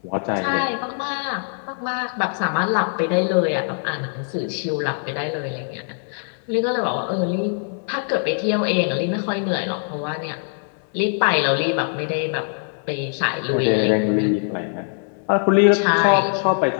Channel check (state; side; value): silent; right; digital silence